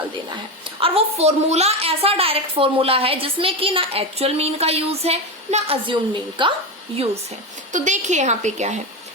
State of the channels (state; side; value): normal; both; correlation 0.16